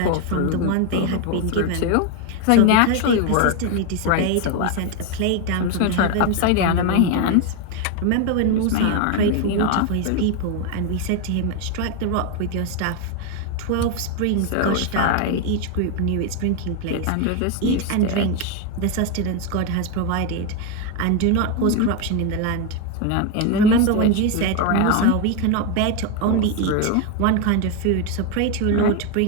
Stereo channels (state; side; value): different; both; correlation 0.02